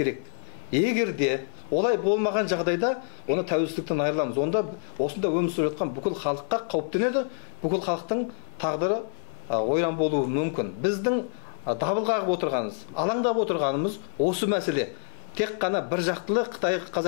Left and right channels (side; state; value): right; silent; 60 dB below the other